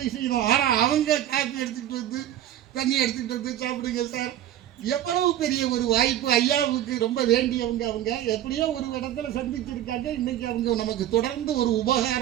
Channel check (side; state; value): left; quieter; 12.0 dB